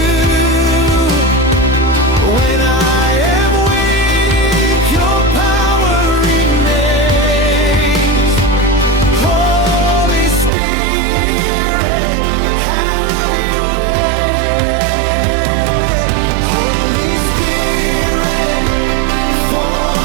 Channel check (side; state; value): left; drops out; at 10.5 s